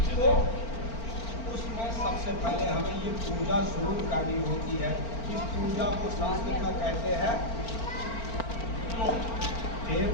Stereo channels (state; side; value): late; right; 4.4 ms